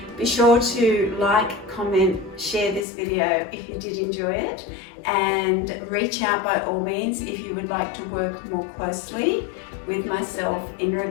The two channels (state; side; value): drops out; right; at 2.9 s